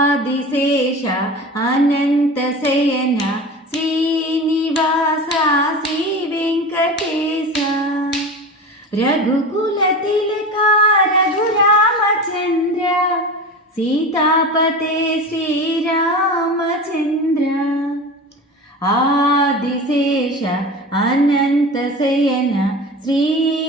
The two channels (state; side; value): normal; both; correlation 0.31